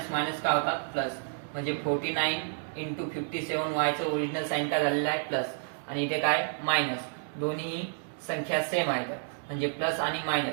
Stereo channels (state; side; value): silent; left; digital silence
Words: मायनस काय होतात, प्लस. म्हणजे 49 into 57y चं ओरिजिनल साइन काय झालेलं आहे, प्लस, आणि इथे काय मायनस. दोन्ही संख्या सेम आहेत, म्हणजे प्लस आणि